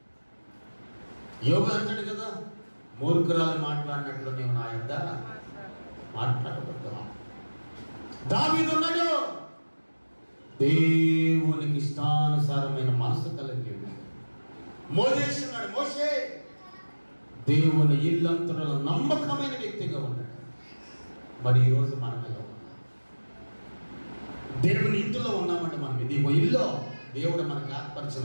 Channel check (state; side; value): inverted; both; correlation -1.00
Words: యోబు అంటాడు కదా, మూర్ఖురాలు మాట్లాడినట్లు నేను నా యొద్ద మాట్లాడబడ్డా. దావీదు ఉన్నాడు, దేవునికి ఇష్టానుసారమైన మనసు కలిగి ఉన్నాడు. మోషే ఉన్నాడు, మోషే దేవుని ఇల్లంతలో నమ్మకమైన వ్యక్తిగా ఉన్నాడు. మరి ఈరోజు మనం ఎలా ఉన్నాం? దేవుని ఇంటిలో ఉన్నామంటే మనం ఇది ఇల్లు, దేవుడు మనకు